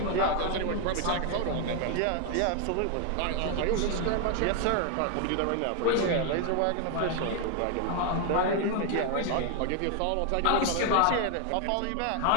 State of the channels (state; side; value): different; both; correlation 0.01